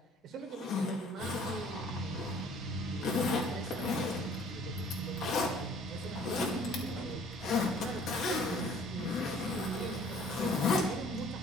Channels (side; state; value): both; normal; correlation 0.54